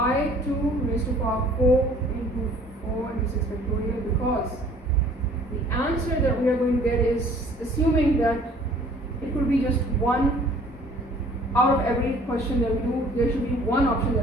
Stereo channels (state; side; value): normal; both; correlation 0.53